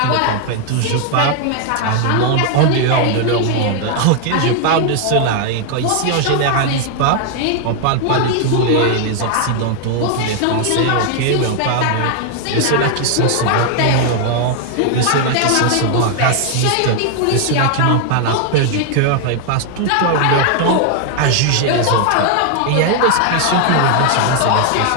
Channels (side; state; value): both; different; correlation 0.00